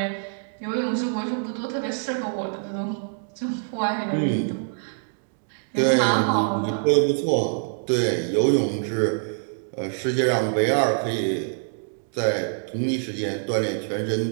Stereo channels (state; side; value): silent; left; digital silence